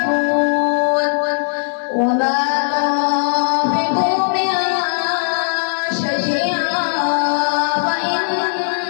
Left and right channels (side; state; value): right; silent; 63 dB below the other